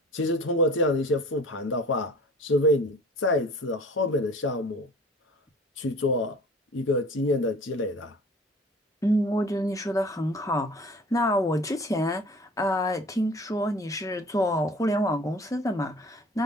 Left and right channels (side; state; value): both; normal; correlation 0.45